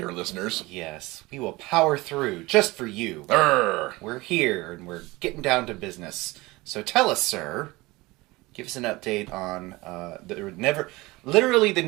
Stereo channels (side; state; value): left; quieter; 21.6 dB